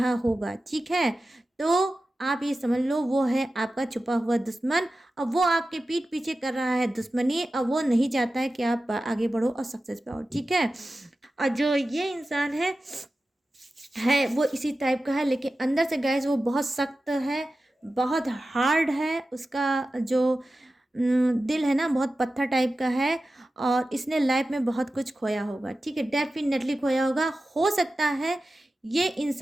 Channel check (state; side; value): normal; both; correlation 0.94